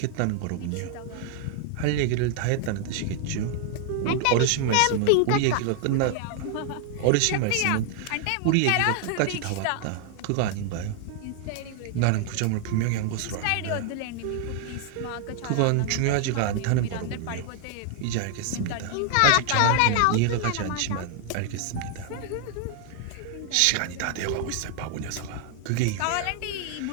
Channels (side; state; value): both; different; correlation 0.00